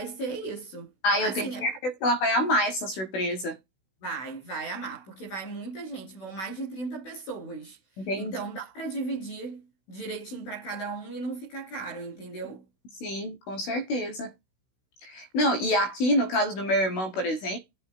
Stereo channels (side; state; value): right; late; 16 ms